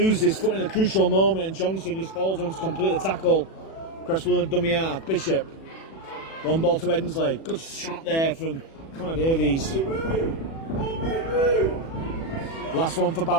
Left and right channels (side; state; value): right; late; 37 ms